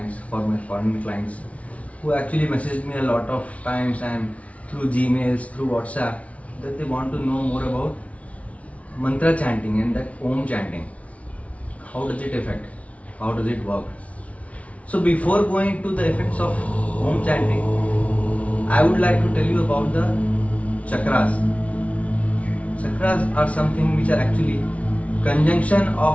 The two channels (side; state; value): right; late; 0.065 ms